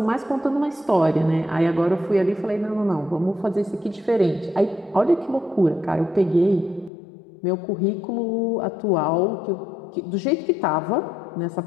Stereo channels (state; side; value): drops out; right; at 6.9 s